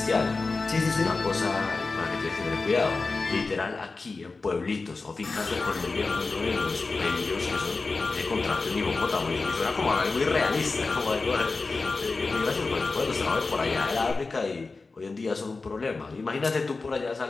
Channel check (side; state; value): right; quieter; 3.9 dB